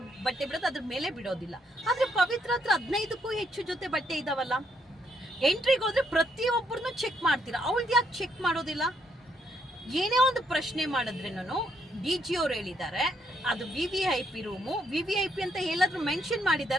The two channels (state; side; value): normal; both; correlation 0.74